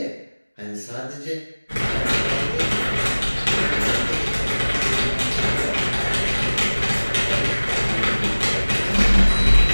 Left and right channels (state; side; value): inverted; both; correlation -1.00